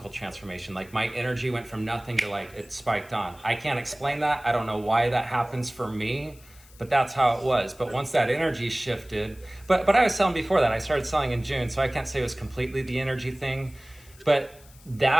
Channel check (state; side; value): noise; left; hiss, 25 dB below the sound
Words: transformation. Like my energy went from nothing to like, it spiked on. I can't explain that. I don't know why that happens for me, but that's how it was. But once that energy shifted, but I was selling before that. I started selling in June, so I can't say it was completely the energy thing, but